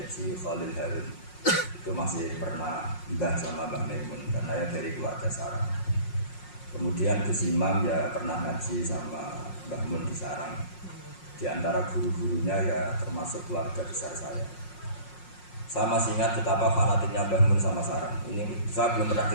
Khalil Harun. Itu masih pernah mbah sama Mbah Maimun karena ya dari keluarga Sarang. Kemudian Gus Imam ya pernah ngaji sama Mbah Mun di Sarang. Di antara guru-gurunya ya termasuk keluarga besar saya. Saya masih ingat betapa fanatiknya Mbah Mun sama Sarang. Ini saya belum pernah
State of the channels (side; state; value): right; late; 5.5 ms